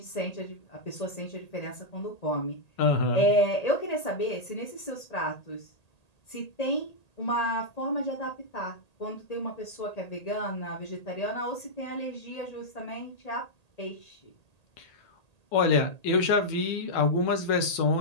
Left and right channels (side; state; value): right; late; 1.8 ms